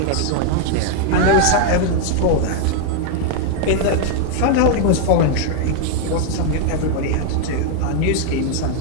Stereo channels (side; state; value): both; different; correlation 0.00